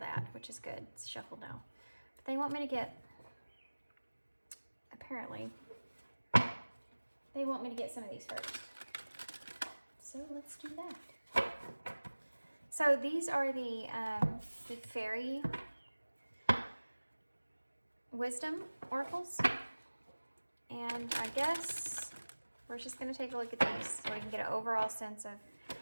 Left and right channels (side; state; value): both; inverted; correlation -1.00